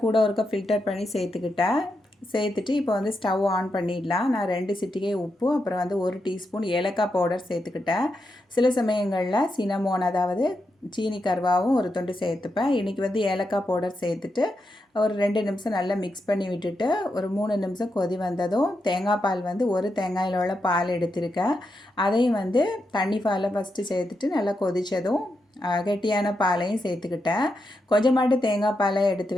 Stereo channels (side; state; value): both; normal; correlation 0.85